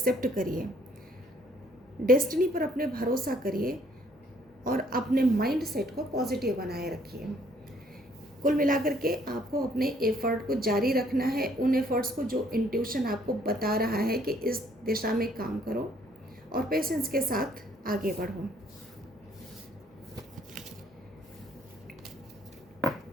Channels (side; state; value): both; normal; correlation 0.63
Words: करिए, डेस्टिनी पर अपने भरोसा करिए और अपने माइंड सेट को पॉजिटिव बनाए रखिए। कुल मिलाकर के आपको अपने एफर्ट को जारी रखना है, उन एफर्ट्स को जो इंट्यूशन आपको बता रहा है कि इस दिशा में काम करो, और पेशेंस के साथ आगे बढ़ो।